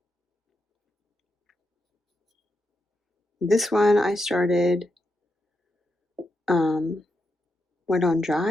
This one I started wet on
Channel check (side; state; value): both; normal; correlation 0.85